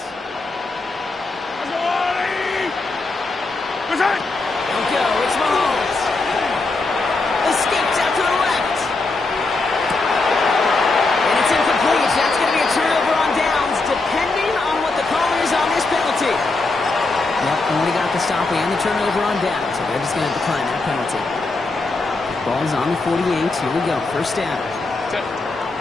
Don't go. It's Mahomes. Escapes out to the left. And it's incomplete. That's going to be a turnover on downs, depending on what the call is on this penalty. referee on the turnover on down, so they're just going to decline that penalty. Ball's on the 48. Here we go. First down.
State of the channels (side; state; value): right; quieter; 3.5 dB